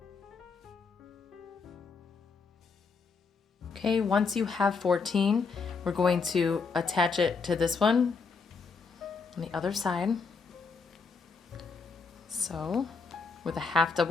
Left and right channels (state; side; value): quieter; right; 4.9 dB